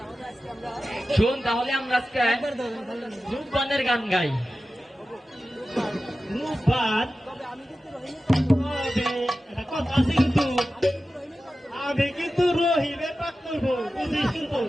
শোন তাহলে আমরা আজকে রূপবানের গান গাই। রূপবান কথা আছে কিন্তু আমি কিন্তু রহিমের পাক করবো, বুঝিস কিন্তু।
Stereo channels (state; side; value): normal; both; correlation 0.94